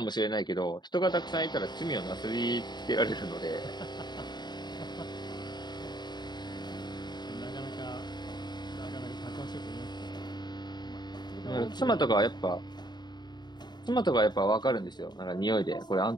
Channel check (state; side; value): late; right; 0.21 ms